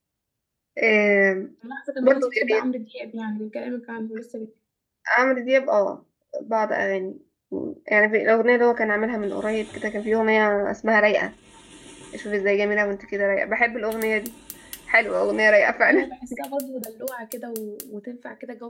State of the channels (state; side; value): identical; both; correlation 1.00